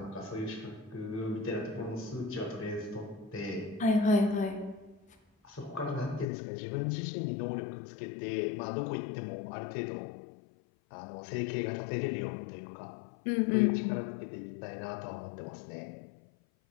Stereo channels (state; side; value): drops out; right; at 6.2 s